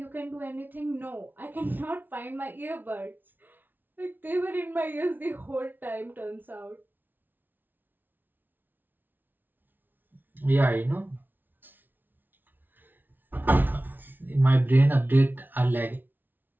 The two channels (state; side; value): late; left; 0.090 ms